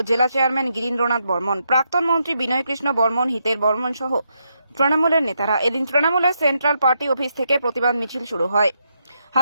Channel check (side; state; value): both; inverted; correlation -0.80